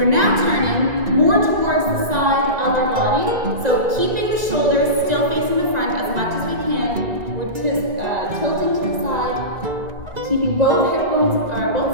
now turning more towards the side of our body. So keeping the shoulders still facing the front as much as we can. We're tilting to the side, keeping both hip bones or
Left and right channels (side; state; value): left; late; 1.9 ms